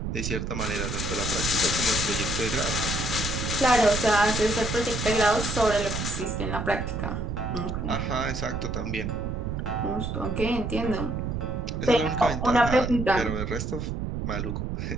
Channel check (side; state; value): right; noise; rumble, 3 dB below the sound